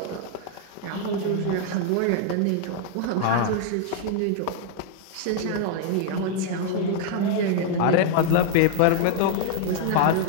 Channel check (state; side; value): different; both; correlation 0.00